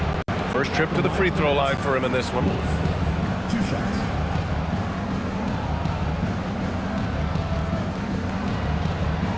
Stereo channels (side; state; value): both; identical; correlation 1.00